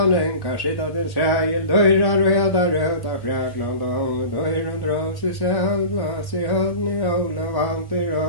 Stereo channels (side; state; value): right; late; 1.1 ms